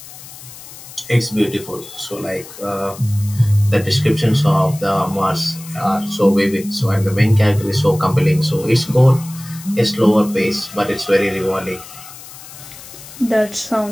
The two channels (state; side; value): noise; left; hiss, 16 dB below the sound